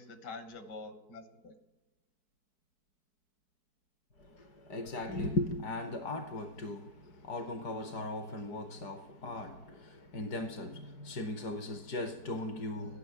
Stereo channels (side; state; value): right; late; 4.6 ms